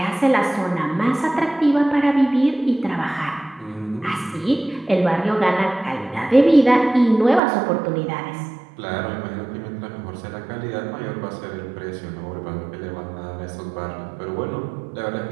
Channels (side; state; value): left; drops out; at 7.4 s